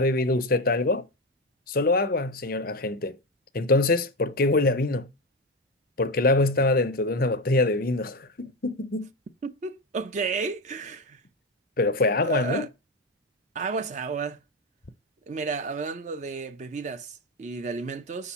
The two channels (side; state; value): both; normal; correlation 0.15